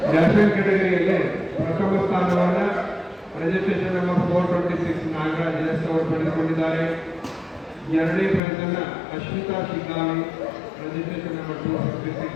ನ್ಯಾಷನಲ್ ಕೆಟಗರಿಯಲ್ಲಿ ಪ್ರಥಮ ಸ್ಥಾನವನ್ನು ರಿಜಿಸ್ಟ್ರೇಷನ್ ನಂಬರ್ 426 ನಾಗರಾಜ್ ಎಸ್ ಅವರು ಪಡೆದುಕೊಂಡಿದ್ದಾರೆ. ಎರಡನೇ ಪ್ರೈಸ್ ಅನ್ನು ಅಶ್ವಿತಾ ಶಿಗ್ಗಾವಿ ರಿಜಿಸ್ಟ್ರೇಷನ್ ನಂಬರ್ 256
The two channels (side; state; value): right; drops out; at 8.4 s